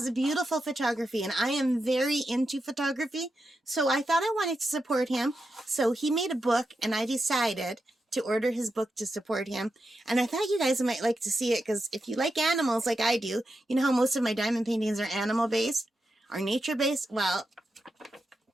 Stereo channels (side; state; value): both; normal; correlation 0.87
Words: a beautiful photography, and I am very into photography, so I thought I wanted to support him. So he made a book, and I decided to order his book to support him. And I thought you guys might like to see it, because if you like animals like I do, you know how most of my diamond paintings are animal-based, or nature-based? Well,